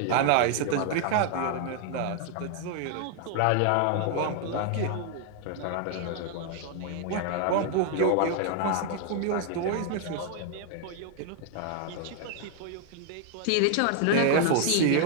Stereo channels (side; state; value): both; different; correlation 0.00